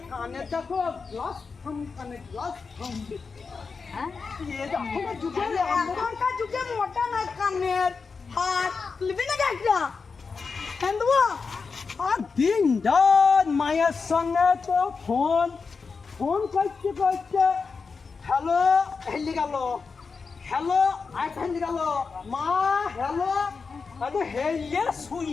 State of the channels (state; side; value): quieter; right; 4.9 dB